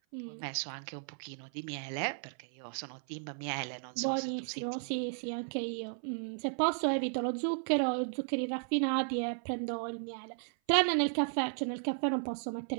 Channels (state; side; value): silent; left; 55 dB below the other